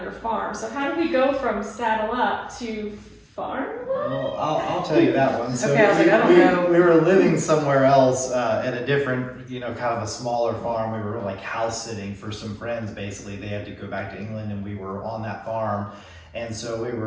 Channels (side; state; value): both; identical; correlation 1.00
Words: your farm. So how did we go from Saddle Up to farm? Well, I'll tell you that one. So Okay, I was like, I don't know. we were living somewhere else in a different, kind of a smaller farm. We were like house sitting for some friends. Basically, they had to go back to England, and we were on that farm. And so we